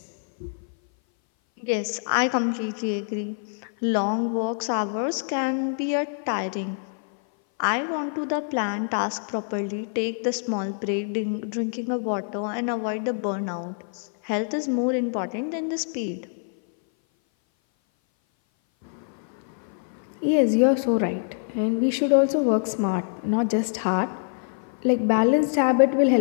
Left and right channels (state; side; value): silent; right; 58 dB below the other